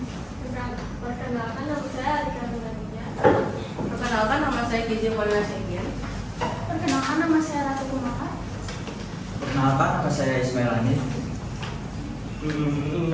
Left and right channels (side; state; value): both; identical; correlation 1.00